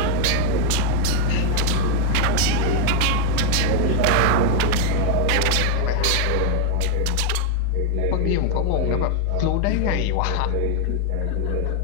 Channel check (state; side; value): different; both; correlation 0.01